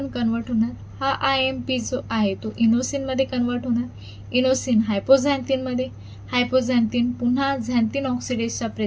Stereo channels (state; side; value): identical; both; correlation 1.00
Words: कन्वर्ट होणार. हा IMP जो आहे तो इनोसिन मध्ये कन्वर्ट होणार. इनोसिन हायपोझॅन्थिन मध्ये, हायपोझॅन्थिन पुन्हा झॅन्थिन ऑक्सिडेजच्या